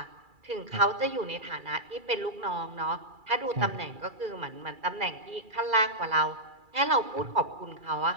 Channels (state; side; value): late; left; 2.3 ms